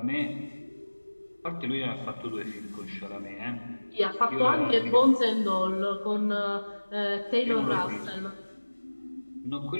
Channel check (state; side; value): inverted; both; correlation -1.00